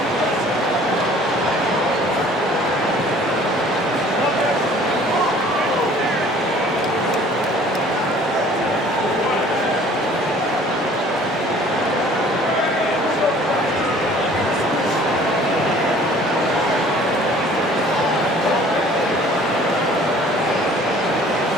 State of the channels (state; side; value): normal; both; correlation 0.52